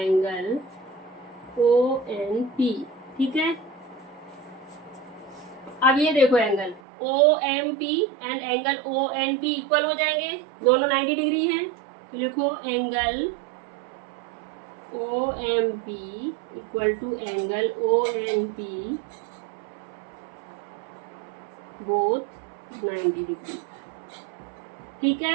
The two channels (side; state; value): left; drops out; at 6.8 s